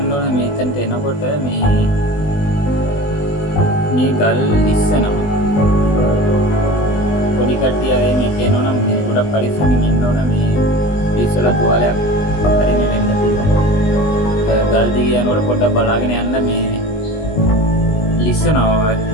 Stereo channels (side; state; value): right; late; 20 ms